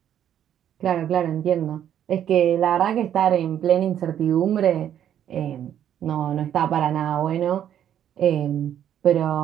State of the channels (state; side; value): quieter; left; 10.2 dB